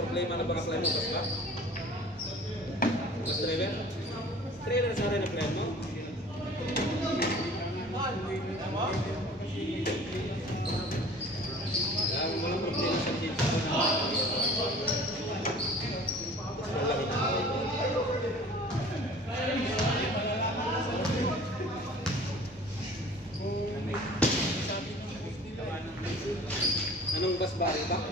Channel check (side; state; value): both; normal; correlation 0.46